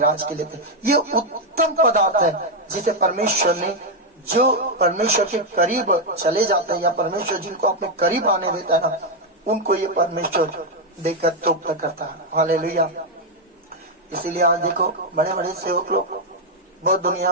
के लेते। ये उत्तम पदार्थ है जिसे परमेश्वर ने, जो परमेश्वर के करीब चले जाते हैं या परमेश्वर जिनको अपने करीब आने देता है ना, उनको ये परमेश्वर देकर तृप्त करता है। हालेलुया। इसीलिए आज देखो बड़े बड़े सेवक लोग बहुत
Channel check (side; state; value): both; normal; correlation 0.02